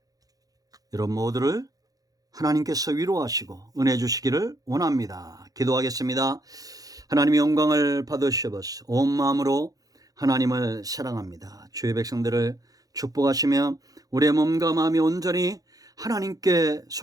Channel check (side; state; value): left; late; 0.18 ms